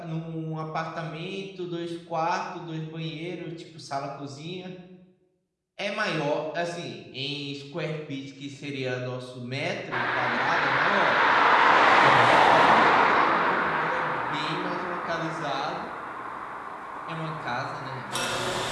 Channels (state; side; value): identical; both; correlation 1.00